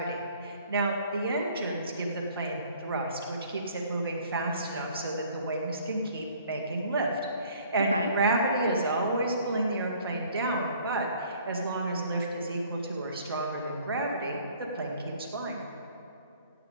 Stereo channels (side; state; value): both; inverted; correlation -0.56